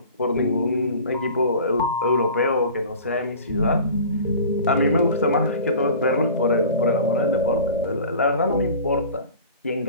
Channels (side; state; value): both; inverted; correlation -0.40